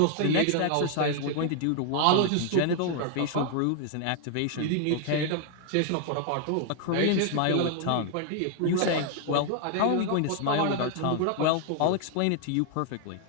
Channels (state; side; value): different; both; correlation 0.00